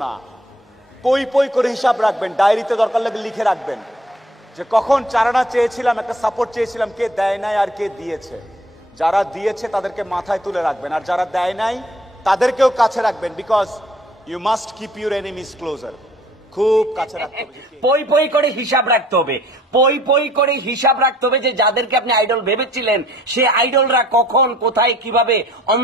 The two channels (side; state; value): both; normal; correlation 0.56